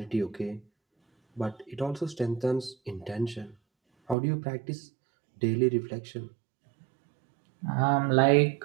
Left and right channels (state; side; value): drops out; left; at 4.2 s